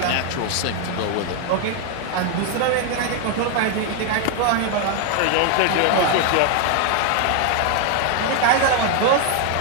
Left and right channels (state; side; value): different; both; correlation 0.01